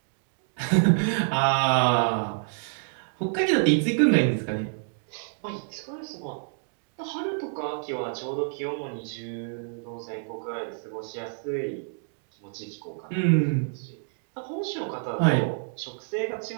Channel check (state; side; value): silent; left; digital silence